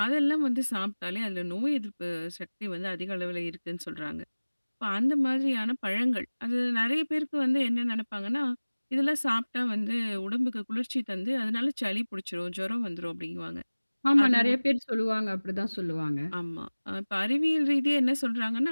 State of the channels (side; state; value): both; inverted; correlation -1.00